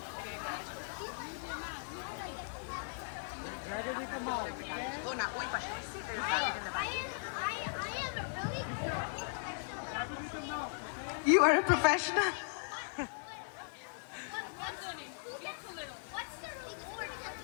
Oh, no, uy, pa. You are a professional.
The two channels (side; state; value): right; silent; digital silence